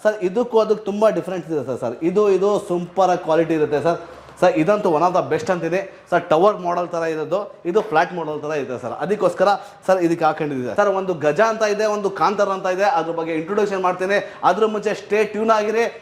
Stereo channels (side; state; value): both; identical; correlation 1.00